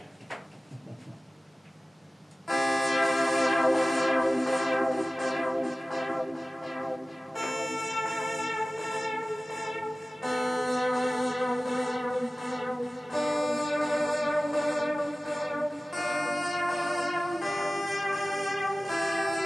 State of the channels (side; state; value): both; normal; correlation 0.97